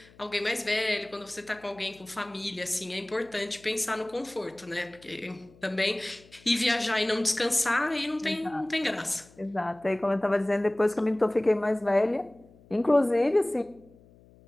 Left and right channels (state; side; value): noise; left; hum, 26 dB below the sound